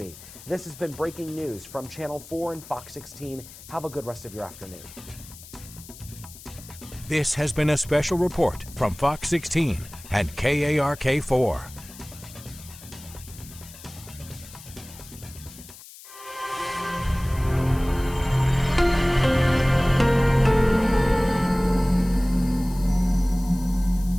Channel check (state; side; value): noise; left; hiss, 18 dB below the sound